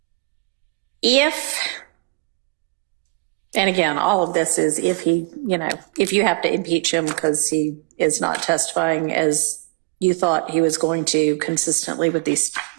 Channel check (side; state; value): left; quieter; 27.2 dB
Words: and again, all of this is if you have to impeach him because he is not testifying as you thought he was going to consistently with these